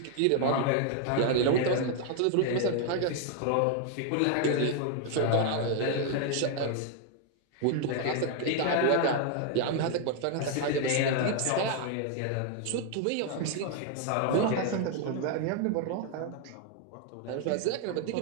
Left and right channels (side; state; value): both; different; correlation 0.00